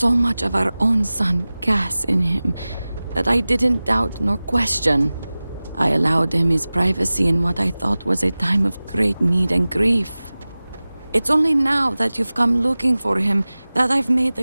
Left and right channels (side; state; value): both; inverted; correlation -0.98